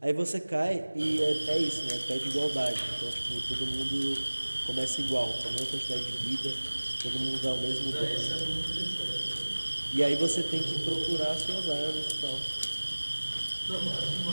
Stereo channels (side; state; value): both; inverted; correlation -1.00